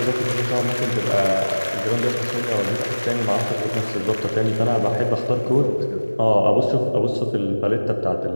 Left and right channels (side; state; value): both; inverted; correlation -1.00